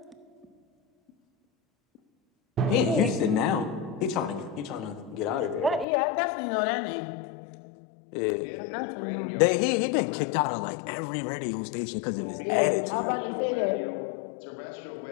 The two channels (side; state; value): right; drops out; at 5.9 s